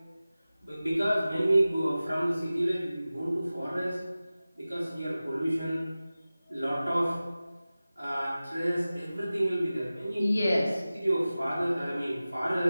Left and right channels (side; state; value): both; inverted; correlation -0.96